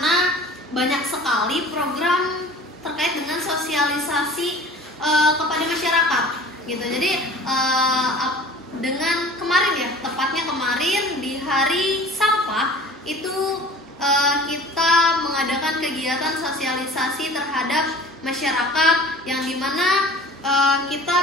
banyak sekali program terkait dengan sosialisasi kepada masyarakat gitu. Jadi dengan kemarin ya, tepatnya kemarin di hari sampah itu kita mengadakan kegiatan sosialisasi terhadap masyarakat yang dimana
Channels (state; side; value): normal; both; correlation 0.44